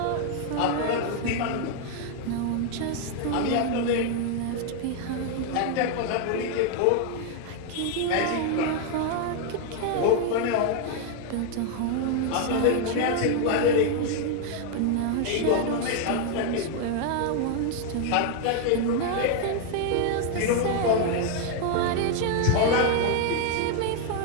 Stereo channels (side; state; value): both; different; correlation 0.00